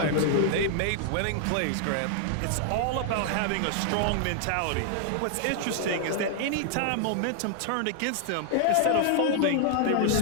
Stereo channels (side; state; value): both; different; correlation -0.01